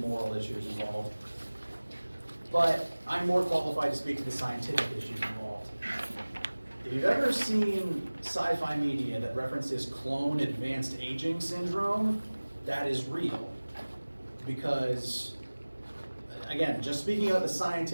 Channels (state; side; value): inverted; both; correlation -1.00